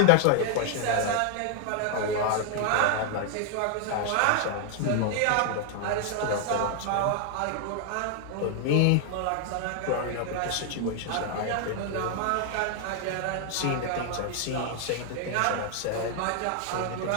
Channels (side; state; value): both; different; correlation 0.00